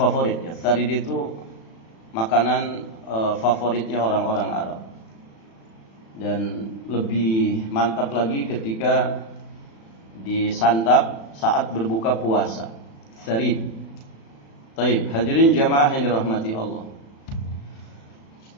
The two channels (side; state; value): right; late; 36 ms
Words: ya. Sarid itu makanan favoritnya orang-orang Arab. Dan lebih mantap lagi ketika disantap saat berbuka puasa. Sarid. Baik, hadirin jamaah yang dirahmati Allah.